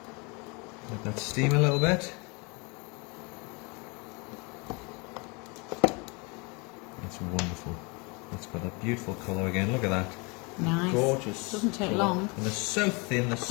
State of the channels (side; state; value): right; quieter; 29.6 dB